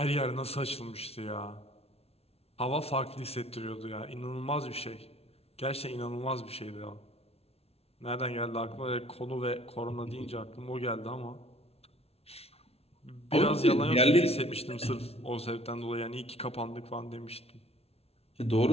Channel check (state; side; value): late; right; 0.30 ms